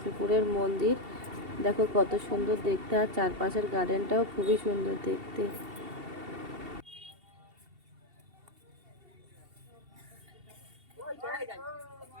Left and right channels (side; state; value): left; late; 2.7 ms